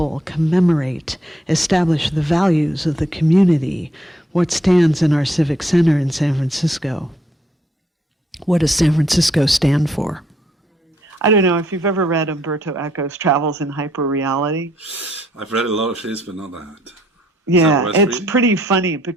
commemorate, establish the values of the community. What stands in our civic center in San Francisco? What does San Francisco stand for? I don't know if you've ever read Umberto Eco's Travels in Hyperreality. I've read a lot of his, but not that. Yeah, it's pretty funny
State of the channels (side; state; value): both; normal; correlation 0.70